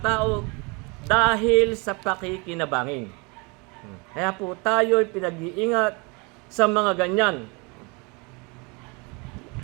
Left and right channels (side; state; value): left; quieter; 29.3 dB